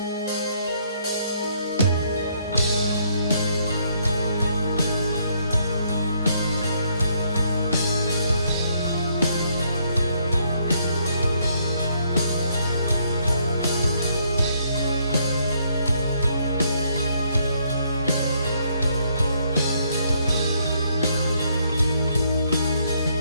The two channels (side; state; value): both; inverted; correlation -0.70